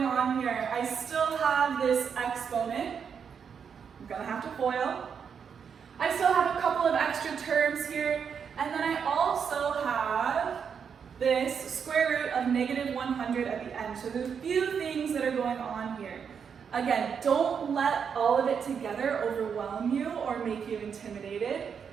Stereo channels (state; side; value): quieter; left; 6.9 dB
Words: on here. I still have this exponent. I'm going to have to FOIL. I still have a couple of extra terms here, and then I also have this square root of negative 100 at the end. So there's a few things that are going on here. Again, don't let all of it together overwhelm you or make you intimidated.